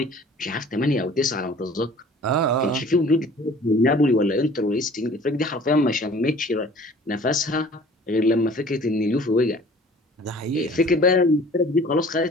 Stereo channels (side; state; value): both; normal; correlation 0.49